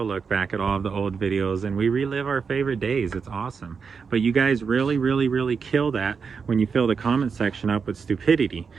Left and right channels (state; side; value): quieter; left; 5.7 dB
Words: look back at all of the old videos and we relive our favorite days. It's awesome. But you guys really kill that when you fill the comment section up with stupidity.